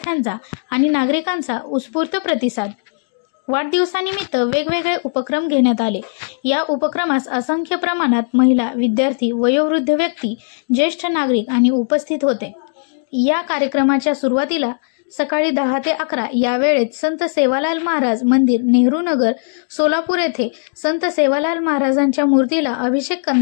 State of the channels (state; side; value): silent; right; digital silence